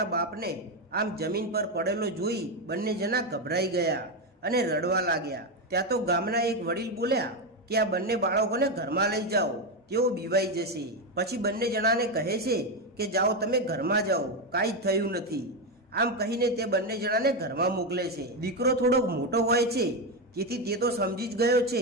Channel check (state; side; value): normal; both; correlation 0.09